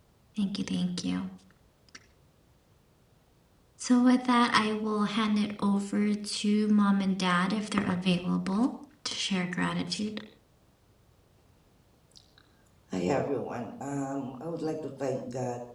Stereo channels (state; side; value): identical; both; correlation 1.00